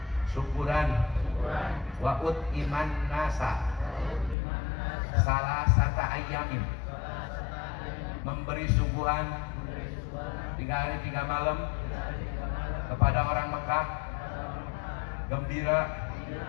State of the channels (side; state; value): right; drops out; at 4.4 s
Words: syukuran wa'ud iman nasa salah sata ayamin, memberi suguhan 3 hari 3 malam kepada orang Mekah, gembira